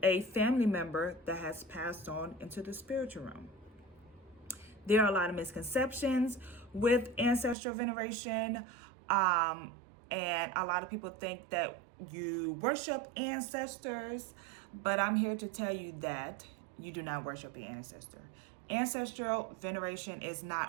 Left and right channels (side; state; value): left; drops out; at 7.6 s